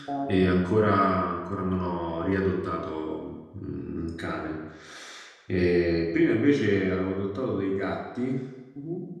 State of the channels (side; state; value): both; identical; correlation 1.00